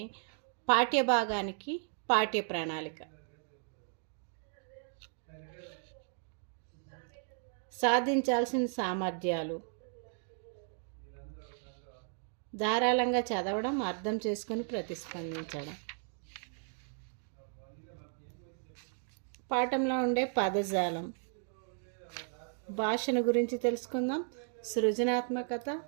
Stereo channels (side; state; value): left; silent; 54 dB below the other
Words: పాఠ్యభాగానికి పాఠ్య ప్రణాళిక. సాధించాల్సిన సామర్థ్యాలు: ధారాళంగా చదవడం, అర్థం చేసుకొని ప్రతిస్పందించడం. పాఠంలో ఉండే పదజాలం, భాషను గురించి తెలుసుకుందాం. సృజనాత్మకత,